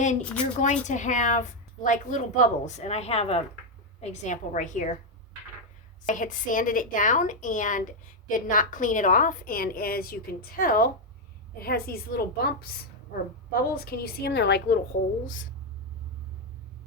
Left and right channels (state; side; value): normal; both; correlation 0.03